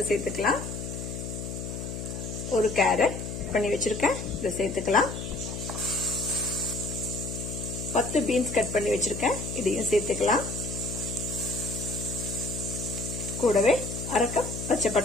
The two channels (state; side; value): noise; left; hum, 6 dB below the sound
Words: சேர்த்துக்கலாம். ஒரு கேரட் பண்ணி வச்சிருக்கேன். இதை சேர்த்துக்கலாம். 10 பீன்ஸ் கட் பண்ணி வச்சிருக்கேன். இதையும் சேர்த்துக்கலாம். கூடவே 1/2 கப் பச்சை